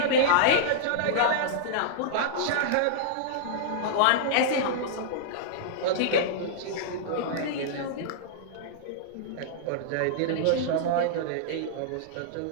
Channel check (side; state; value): both; different; correlation -0.02